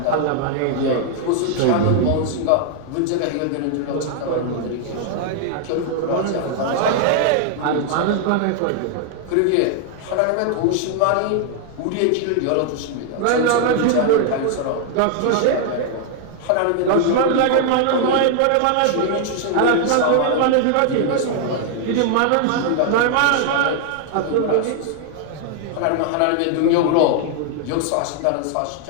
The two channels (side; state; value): both; different; correlation 0.00